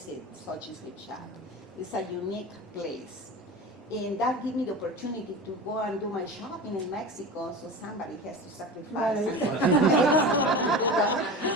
Sochi's Gift Shop. It's a unique place. And that gave me the opportunity to go and do my shopping in Mexico, so somebody has to sacrifice to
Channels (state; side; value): normal; both; correlation 0.31